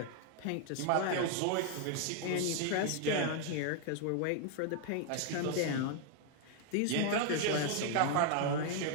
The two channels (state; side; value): different; both; correlation 0.00